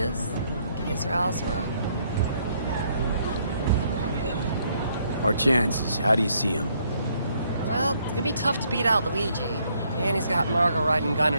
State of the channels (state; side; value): inverted; both; correlation -0.70